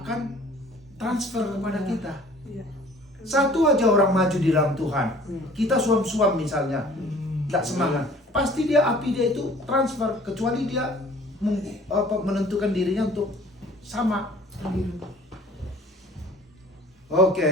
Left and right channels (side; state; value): both; normal; correlation 0.51